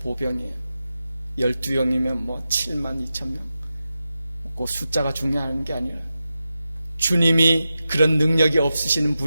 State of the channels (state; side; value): inverted; both; correlation -0.91